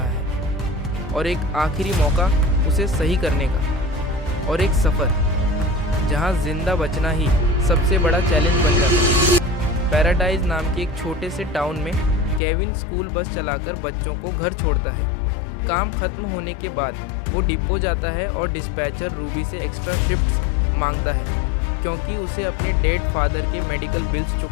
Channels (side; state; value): right; drops out; at 12.4 s